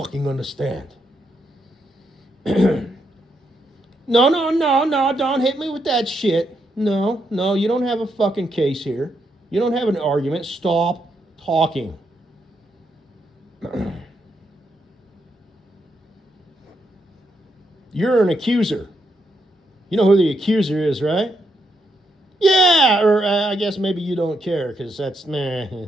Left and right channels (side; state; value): both; normal; correlation 0.80